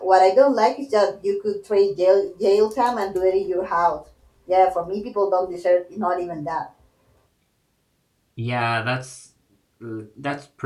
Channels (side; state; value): both; identical; correlation 1.00